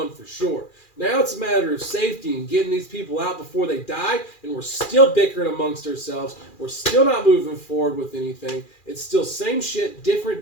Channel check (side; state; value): right; late; 2.4 ms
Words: for sure. Now it's a matter of safety and getting these people out before they die, and we're still bickering amongst ourselves. We're still not moving forward with anything. It's still same shit, different